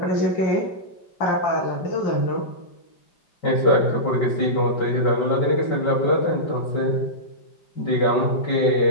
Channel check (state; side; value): late; right; 5.2 ms